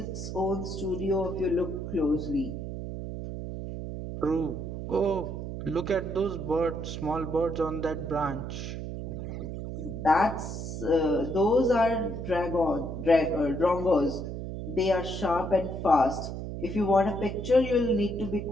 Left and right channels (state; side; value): noise; right; hum, 6 dB below the sound